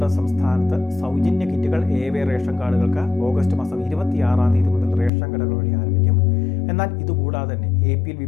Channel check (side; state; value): right; drops out; at 5.1 s